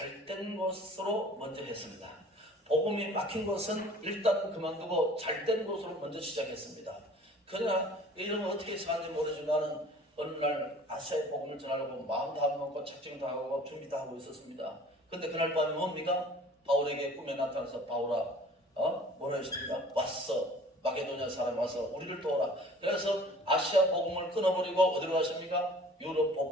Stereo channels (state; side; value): normal; both; correlation 0.49